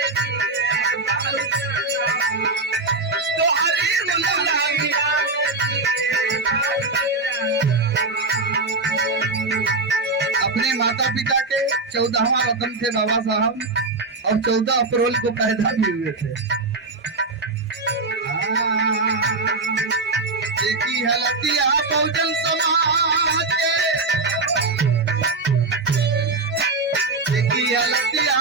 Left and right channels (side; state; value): left; quieter; 3.5 dB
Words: अपने माता पिता के 14वां रत्न थे बाबा साहब और 14 अप्रैल को पैदा भी हुए थे। देखी हलतिया बहुजन समाज देखी हलतिया